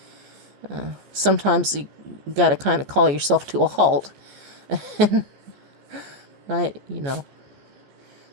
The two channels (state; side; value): late; left; 15 ms